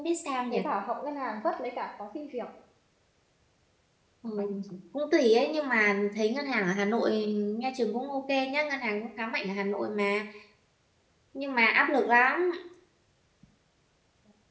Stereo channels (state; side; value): identical; both; correlation 1.00